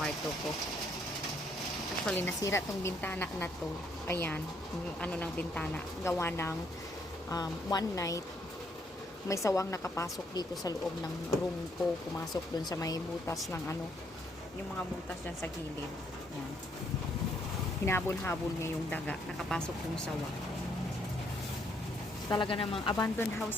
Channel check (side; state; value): both; normal; correlation 0.71